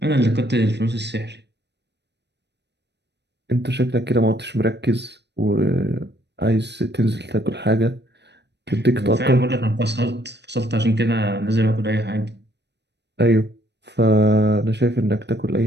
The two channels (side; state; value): left; late; 0.50 ms